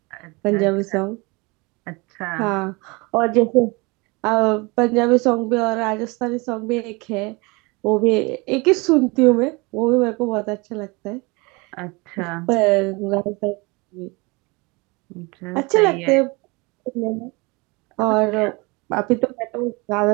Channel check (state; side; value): quieter; left; 26.7 dB